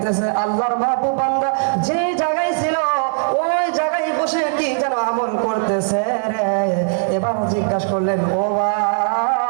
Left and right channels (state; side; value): silent; left; digital silence